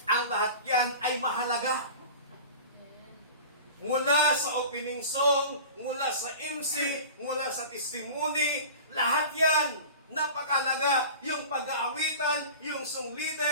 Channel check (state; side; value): inverted; both; correlation -0.36